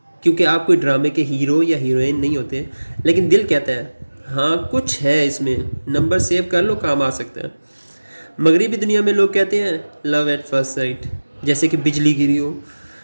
क्योंकि आप कोई ड्रामे के हीरो या हीरोइन नहीं होते, लेकिन दिल कहता है हाँ कुछ है इसमें, नंबर सेव कर लो, काम आ सकता है। मगरिबी दुनिया में लोग कहते हैं लव एट फर्स्ट साइट, जैसे कि बिजली गिरी हो,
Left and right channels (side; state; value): both; inverted; correlation -1.00